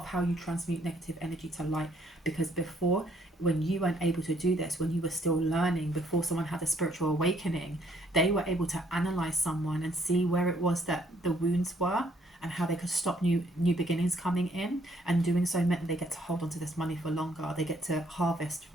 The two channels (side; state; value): both; normal; correlation 0.67